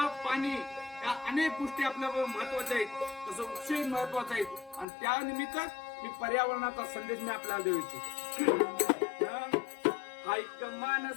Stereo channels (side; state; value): right; drops out; at 4.9 s